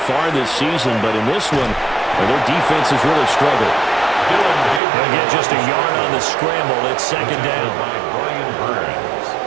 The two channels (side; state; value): left; drops out; at 4.8 s